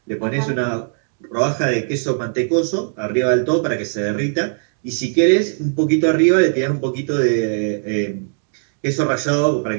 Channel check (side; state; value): left; silent; digital silence